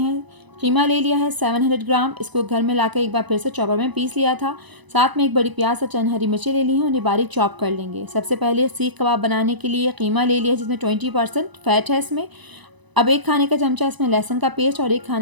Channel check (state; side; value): late; left; 1.0 ms